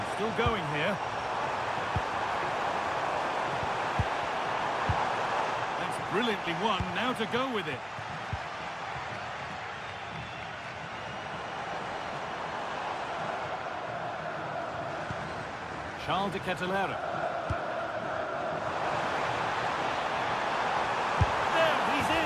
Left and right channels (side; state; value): both; identical; correlation 1.00